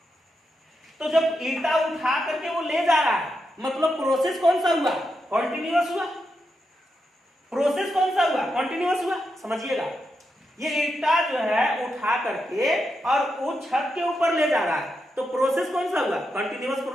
तो जब ईंटा उठा करके वो ले जा रहा है, मतलब प्रोसेस कौन सा हुआ, कॉन्टिन्यूअस हुआ, प्रोसेस कौन सा हुआ, कॉन्टिन्यूअस हुआ। समझिएगा, ये ईंटा जो है उठा करके और वो छत के ऊपर ले जा रहा है, तो प्रोसेस कौन सा हुआ, कंटिन्यूअस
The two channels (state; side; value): normal; both; correlation 0.85